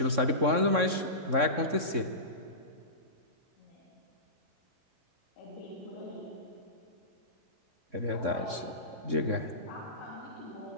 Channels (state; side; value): late; left; 3.6 ms